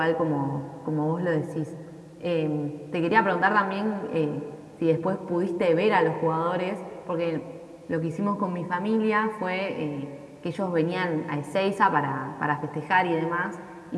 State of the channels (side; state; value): both; identical; correlation 1.00